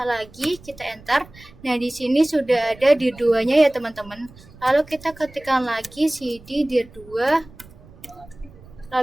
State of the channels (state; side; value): noise; right; rumble, 22 dB below the sound